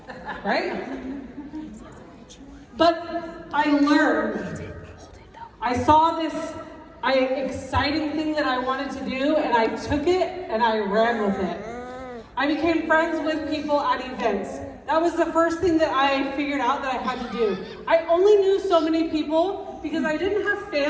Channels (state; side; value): identical; both; correlation 1.00